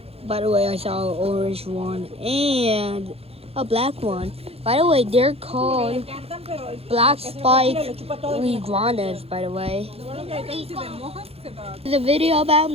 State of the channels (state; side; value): late; left; 0.29 ms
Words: By the way, I saw an orange one and a black one. By the way, they're called black spike iguanas, by the way. It's a video about